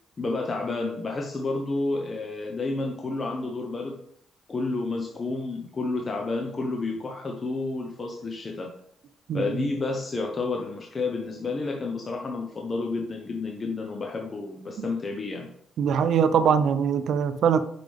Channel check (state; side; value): normal; both; correlation 0.71